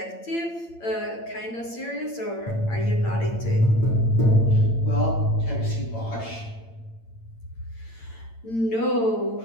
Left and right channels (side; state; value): right; late; 8.8 ms